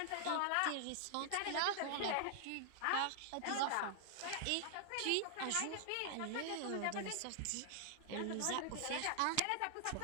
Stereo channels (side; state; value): both; different; correlation 0.00